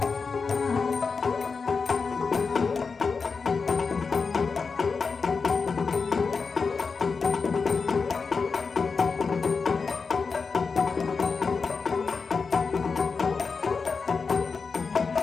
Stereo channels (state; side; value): quieter; right; 5.0 dB